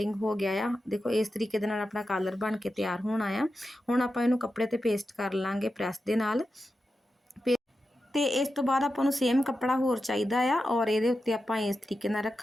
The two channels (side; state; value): both; normal; correlation 0.90